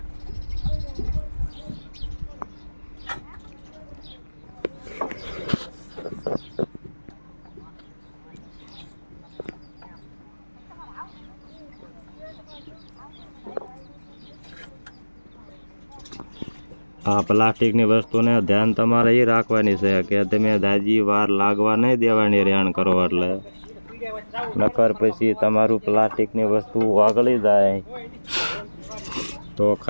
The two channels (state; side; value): inverted; both; correlation -1.00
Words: આ પ્લાસ્ટિકની વસ્તુને ધ્યાન તમારે એ રાખવાની છે કે તમે દાજી વાર લાગવા નહીં દેવાની રેણ કરો, એટલે નકર પછી તમારું પ્લાસ્ટિકની વસ્તુ વાગળી જાય તો